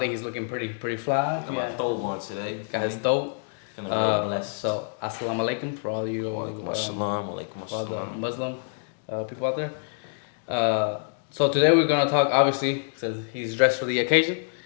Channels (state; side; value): silent; right; 61 dB below the other